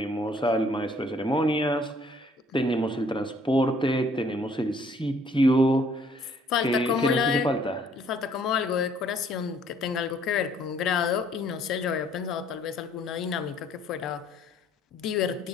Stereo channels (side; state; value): both; normal; correlation 0.61